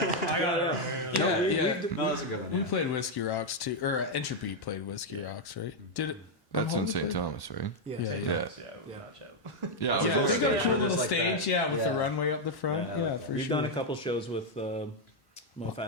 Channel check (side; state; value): right; late; 1.1 ms